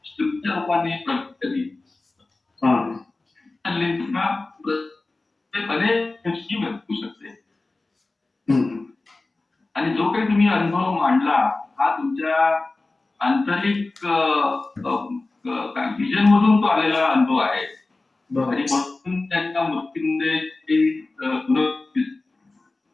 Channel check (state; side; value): quieter; right; 3.3 dB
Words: तुमच्या रूपाने प्रगत करी अनेक गोष्टी भेटू शकते. आणि जो काही तुम्ही अनुभव मांडला हा तुमच्या आंतरिक व्हिजन मधून तो आलेला अनुभव आहे. आणि म्हणून त्यांच्या मृत्यूमध्ये